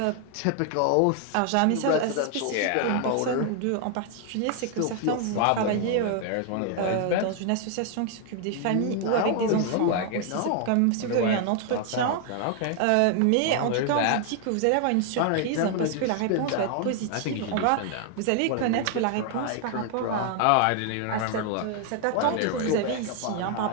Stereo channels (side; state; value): both; different; correlation 0.00